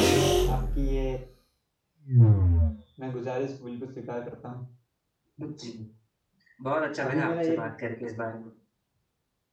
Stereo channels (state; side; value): identical; both; correlation 1.00